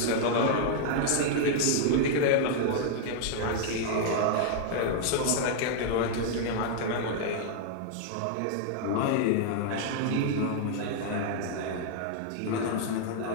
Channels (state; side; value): different; both; correlation -0.01